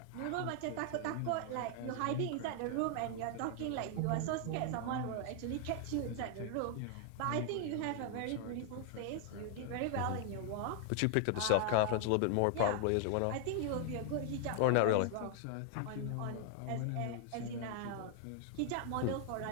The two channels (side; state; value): both; different; correlation 0.00